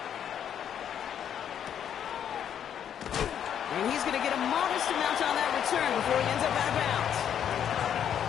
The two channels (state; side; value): quieter; right; 9.1 dB